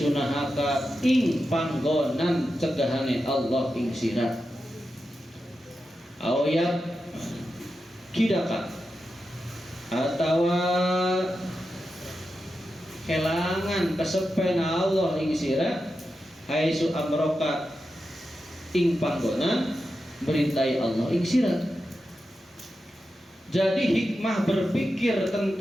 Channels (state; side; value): normal; both; correlation 0.90